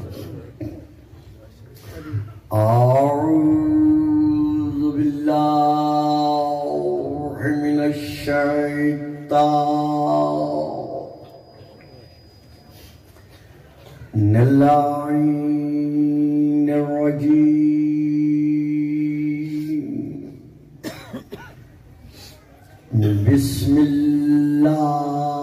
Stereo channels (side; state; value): both; identical; correlation 1.00